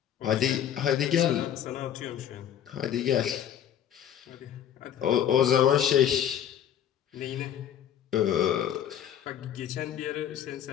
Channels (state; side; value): quieter; right; 9.9 dB